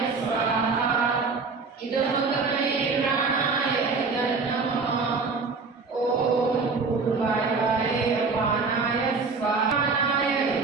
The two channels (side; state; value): left; quieter; 4.5 dB